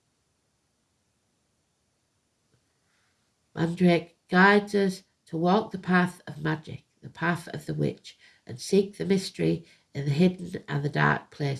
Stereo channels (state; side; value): identical; both; correlation 1.00